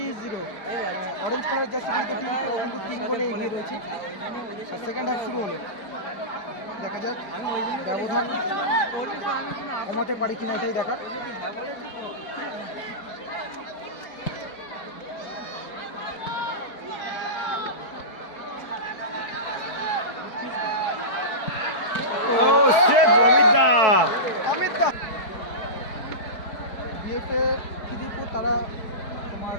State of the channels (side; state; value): right; late; 4.6 ms